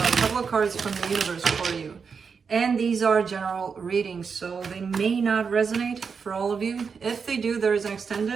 couple of cards from the universe for you. And these are general readings, so they may not resonate for all of you. If they do, there is an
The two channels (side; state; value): left; quieter; 5.8 dB